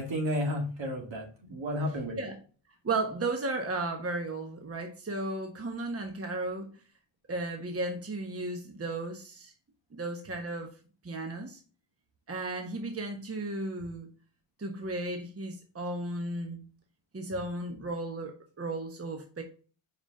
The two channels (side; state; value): both; normal; correlation 0.18